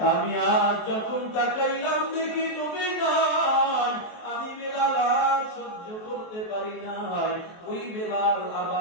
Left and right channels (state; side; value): late; right; 23 ms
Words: আমি আজ যখন তাকাইলাম দেখি নবী নাই, আমি বেলাল আর সহ্য করতে পারি নাই। ওই বেলাল